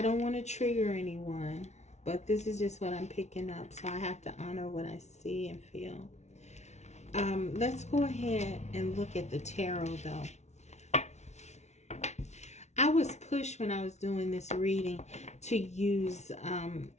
don't want to trigger anyone, but this is just what I'm picking up. So I have to honor what I see and feel. Let's go ahead and look at the tarot, though. I was pushed when I was doing this reading to use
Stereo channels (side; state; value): right; late; 0.32 ms